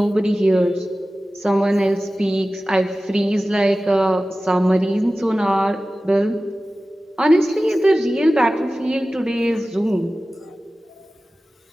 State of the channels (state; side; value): normal; both; correlation 0.96